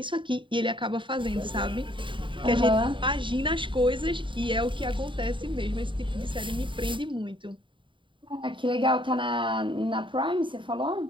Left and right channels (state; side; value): late; left; 0.24 ms